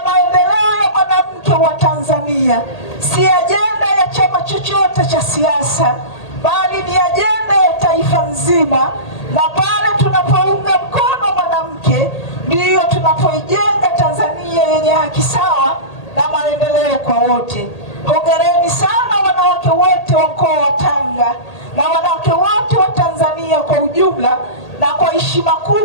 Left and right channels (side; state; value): right; late; 1.8 ms